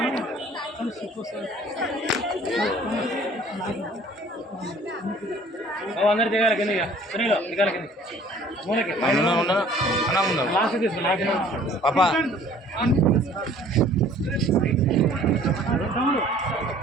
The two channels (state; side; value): normal; both; correlation 0.53